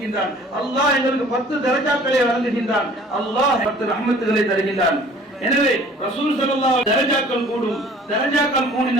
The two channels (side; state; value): both; normal; correlation 0.51